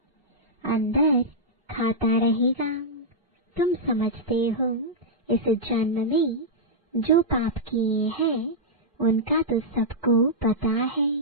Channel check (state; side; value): normal; both; correlation -0.09